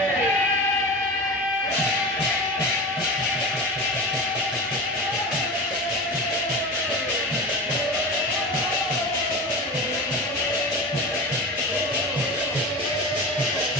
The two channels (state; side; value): normal; both; correlation 0.29